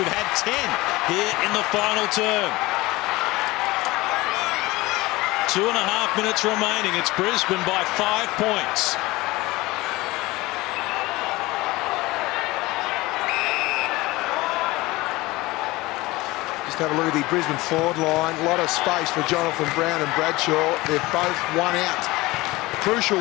had 10 here in the final term. 2.5 minutes remaining. It's Brisbane by 5 points. Just have a look at the Brisbane forward line. A lot of space for Jonathan Brown and Bradshaw. They're both one out. Crucial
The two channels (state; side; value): quieter; right; 20.4 dB